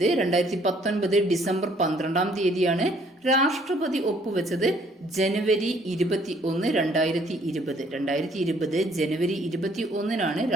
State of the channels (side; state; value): both; normal; correlation 0.62